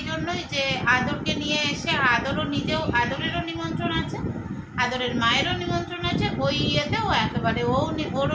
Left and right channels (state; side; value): identical; both; correlation 1.00